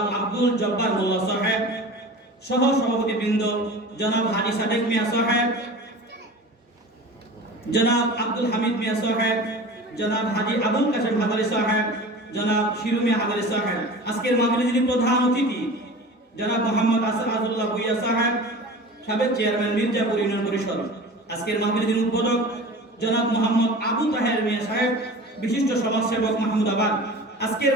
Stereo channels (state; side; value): normal; both; correlation 0.36